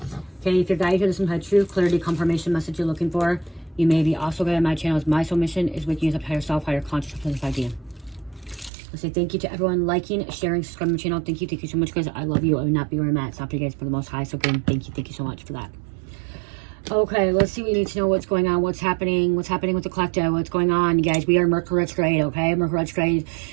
Okay, if you're guided here to some kind of truth, clarity, confirmation message you're looking for, you may be also guided on my channel. My soul mission is waking you up to higher self, higher consciousness idea. I say thank you to everyone liking, sharing, subscribing to my channel. Thank you so much, guys. I love you. I would not be where I'm at. It's not for you guys, for the most high. So again, thank you so much for that. Okay, let's see. We need to know what's going on, what's happening with the collective, what's going on, you guys. We are Mercury retrograde, okay? Mercury retrograde.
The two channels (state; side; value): drops out; left; at 8.7 s